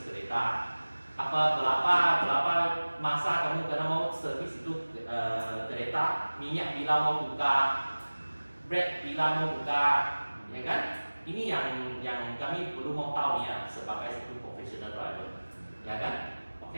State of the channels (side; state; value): both; inverted; correlation -1.00